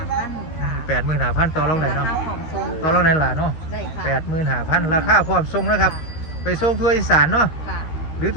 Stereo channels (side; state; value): right; late; 13 ms